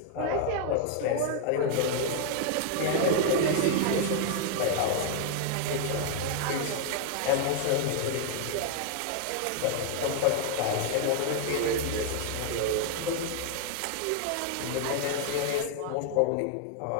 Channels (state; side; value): different; both; correlation 0.00